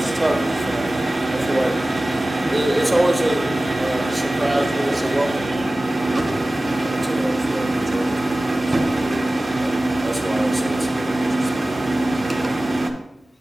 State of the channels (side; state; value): both; normal; correlation 0.97